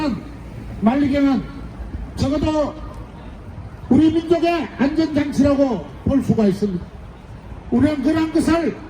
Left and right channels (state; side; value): identical; both; correlation 1.00